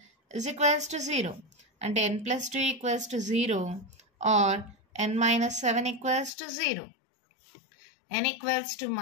is equals to 0. అంటే n +2 equals to 0 or n -7 equals to 0. n equals to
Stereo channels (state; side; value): drops out; right; at 6.3 s